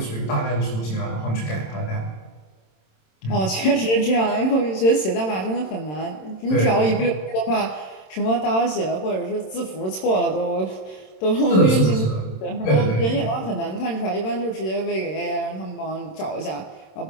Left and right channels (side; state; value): right; late; 27 ms